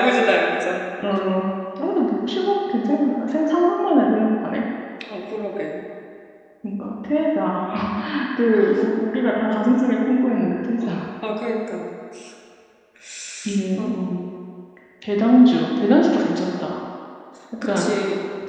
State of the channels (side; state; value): both; identical; correlation 1.00